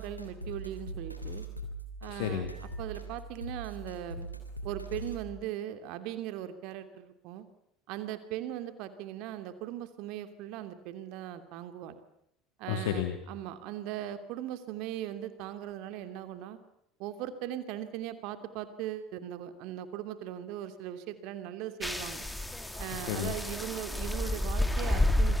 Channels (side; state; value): both; normal; correlation 0.47